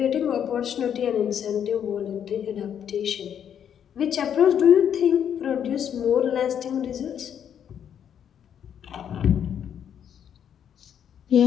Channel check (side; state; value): right; quieter; 8.9 dB